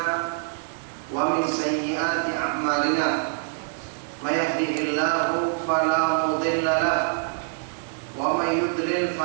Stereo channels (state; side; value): silent; left; 62 dB below the other